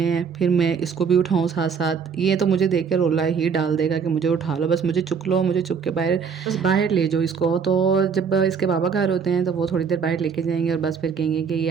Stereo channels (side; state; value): left; quieter; 6.2 dB